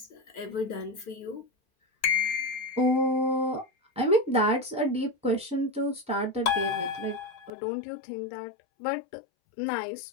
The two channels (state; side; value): drops out; right; at 7.5 s